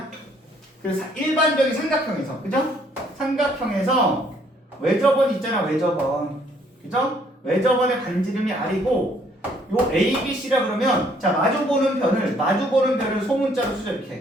그래서 일반적인 삼각형에서, 그죠? 삼각형에서 외접원 있잖아. 외접원. 그죠? 외접원의 반지름이 R이고 요 A, B, C라 그러면 자, 마주보는 변을 소문자로 쓰죠. 이렇게.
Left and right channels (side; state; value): both; normal; correlation 0.64